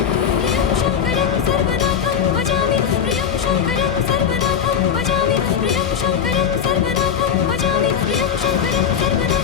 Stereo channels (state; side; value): quieter; right; 8.0 dB